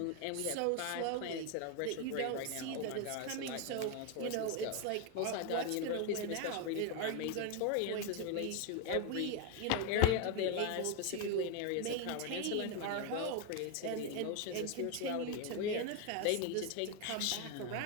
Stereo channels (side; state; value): both; different; correlation 0.01